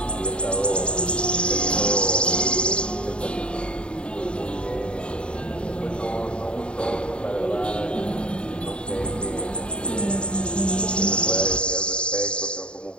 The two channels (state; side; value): late; right; 0.054 ms